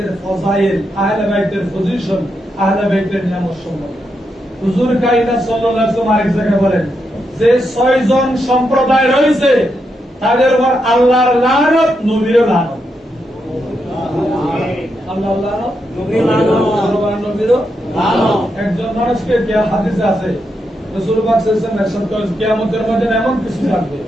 ফজাইল, আহলে বাইতের পজিশন, আহলে বাইতের নিয়ামত সম্পর্কে। হুজুর কায়নাত সাল্লাল্লাহু আলাইহি ওয়াসাল্লাম আরেক জায়গায় বলেন যে 6 জন সম্প্রদায় রয়েছে তাদের উপর আল্লাহর লানত, নবীর লানত। আল্লাহর লানত, নবীর লানত, নবীর লানত। একজন মানুষকে যে হাদিসে আছে রাসূল পাক সাল্লাল্লাহু আলাইহি ওয়াসাল্লাম ইরশাদ করেন কিয়ামতের ময়দানে এমন কিছু থাকবে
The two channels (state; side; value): normal; both; correlation 0.83